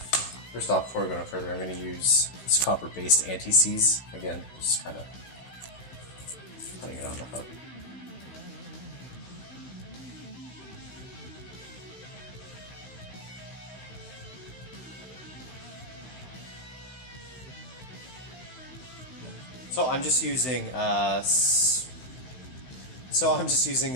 First off, before we go no further, I'm going to use this copper-based anti-seize. Again, just kind of putting it on the hub. So I'm just using a silicone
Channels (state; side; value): late; right; 16 ms